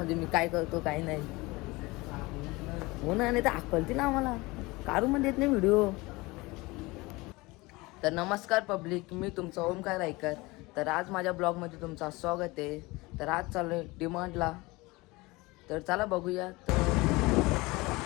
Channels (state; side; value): quieter; right; 22.7 dB